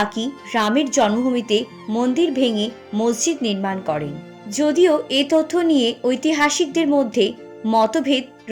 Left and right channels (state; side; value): identical; both; correlation 1.00